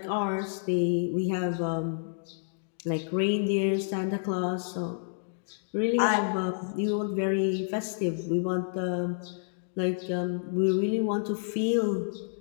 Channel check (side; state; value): right; silent; digital silence